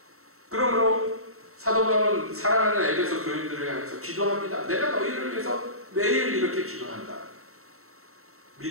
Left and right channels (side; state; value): left; late; 0.63 ms